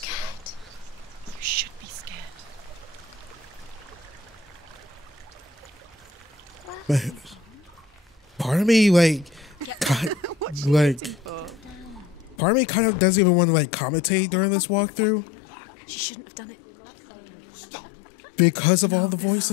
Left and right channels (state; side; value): drops out; right; at 12.4 s